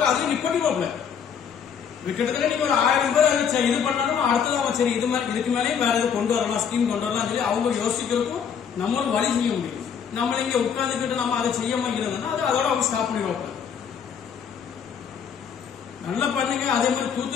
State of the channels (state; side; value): quieter; right; 7.4 dB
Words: அதுல நிப்பட்டிடுவாப்ல. கிட்டத்தட்ட நீங்க ஒரு 1000 பேர் இது பண்ணாலும் அடுத்தது அவன் சரி இது மாதிரி இதுக்கு மேலேயும் வேற எது கொண்டு வரலாம், ஸ்கீம் கொண்டு வரலாம் சொல்லி அவங்க யோசிக்கிறதுக்கும் நம்மளும் வழி செய்ய முடியும். நம்மள இங்க உட்கார்ந்துக்கிட்டு நம்ம அதை செய்யாம இருந்தோம்னா அதோட அவங்க ஸ்டாப் பண்ணிடுவாப்ல. நல்லா பண்ணுங்க. அதே மாதிரி